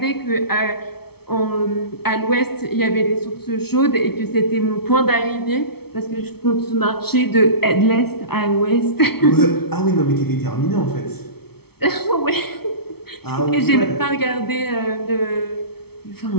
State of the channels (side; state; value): right; late; 0.96 ms